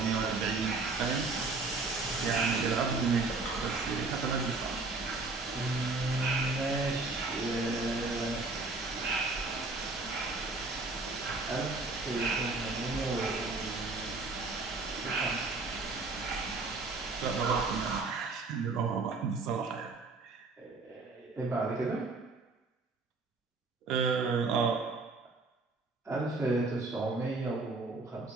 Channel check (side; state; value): left; quieter; 3.7 dB